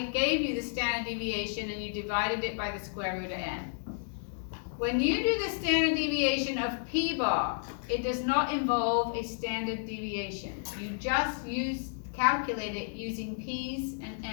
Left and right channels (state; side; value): silent; right; digital silence